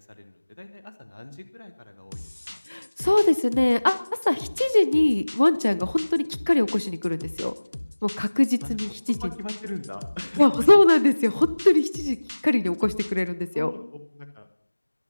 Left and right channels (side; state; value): both; inverted; correlation -1.00